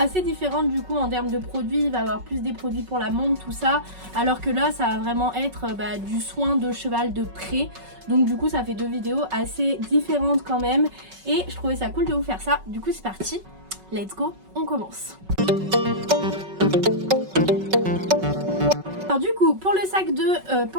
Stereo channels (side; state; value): left; late; 5.3 ms